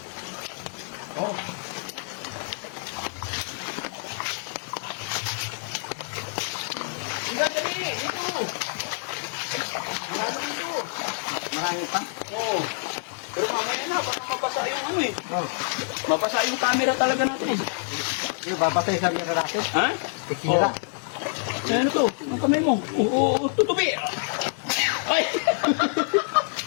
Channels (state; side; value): silent; right; 60 dB below the other